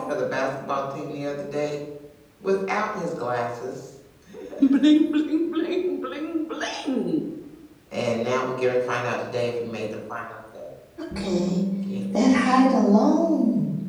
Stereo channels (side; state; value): both; identical; correlation 1.00